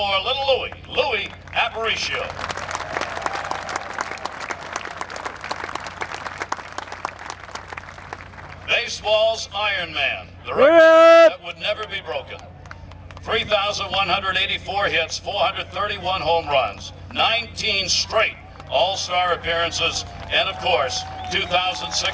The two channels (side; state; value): both; identical; correlation 1.00